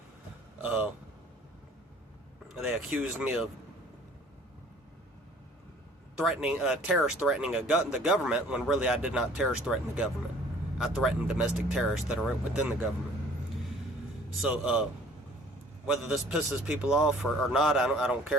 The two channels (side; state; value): both; normal; correlation 0.52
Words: They accused me of terrorist threatening the government, when really I did not terrorist threaten the government. I threatened domestic terrorists that are within the government. So, whether this pisses people off or not, I don't